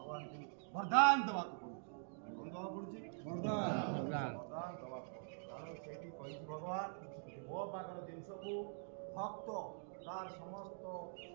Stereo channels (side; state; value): left; silent; digital silence